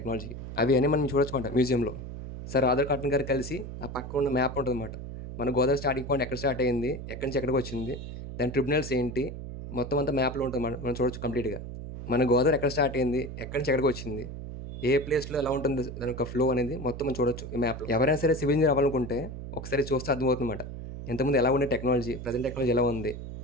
అవి అన్నీ మనం చూడొచ్చు అన్నమాట మ్యూజియంలో. సార్ ఆధార్ కాటన్ గారు కలిసి ఆ పక్క ఉన్న మ్యాప్ ఉంటుందన్నమాట. మన గోదావరి స్టార్టింగ్ పాయింట్ ఎక్కడ స్టార్ట్ అయింది, ఎక్కడి నుంచి ఎక్కడికి వచ్చింది, దాని ట్రిబ్యునల్స్ ఏంటి, మొత్తం అంతా మ్యాప్లో ఉంటుంది మనం చూడొచ్చు కంప్లీట్గా. మన గోదావరి ఎక్కడ స్టార్ట్ అయింది, ఎక్కడి నుంచి ఎక్కడికి వచ్చింది, ఏ ప్లేస్లో ఎలా ఉంటుంది దాని యొక్క ఫ్లో అనేది మొత్తం మనం చూడొచ్చు ఈ మ్యాప్లో. ఎవరైనా సరే సివిల్ ఇంజనీర్ అవ్వాలనుకుంటే ఒకసారి చూస్తే అర్థమవుతుందన్నమాట. ఇంతకుముందు ఎలా ఉండే టెక్నాలజీ, ప్రజెంట్ టెక్నాలజీ ఎలా ఉంది.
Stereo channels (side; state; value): right; noise; hum, 9 dB below the sound